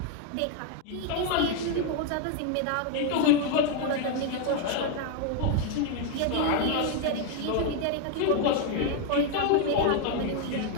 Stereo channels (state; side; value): different; both; correlation 0.01